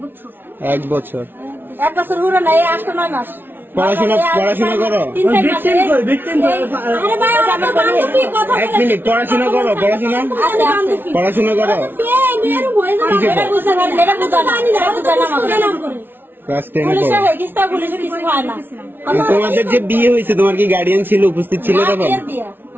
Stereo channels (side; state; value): left; late; 0.10 ms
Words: 1 বছর। 1 বছর হলো না, 8-9 মাস। পড়াশোনা করো? 1 মিনিট, পড়াশোনা করো? পড়াশোনা করো? ক্লাস 10 তোমাদের যে বিয়ে হয়েছে, তোমার কি গার্ডিয়ান ছিল, উপস্থিত ছিল তখন?